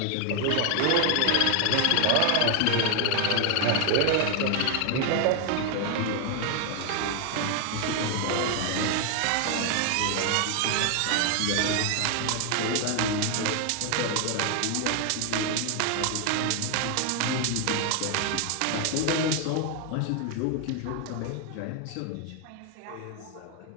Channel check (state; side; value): different; both; correlation 0.01